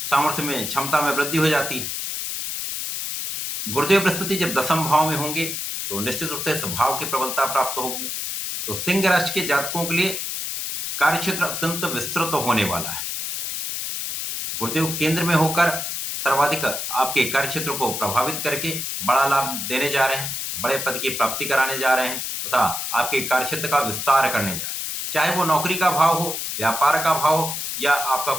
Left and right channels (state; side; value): noise; left; hiss, 4 dB below the sound